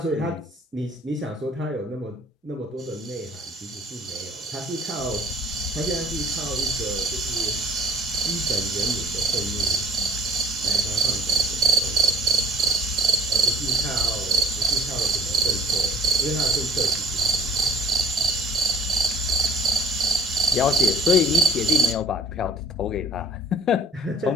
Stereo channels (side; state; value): both; normal; correlation 0.51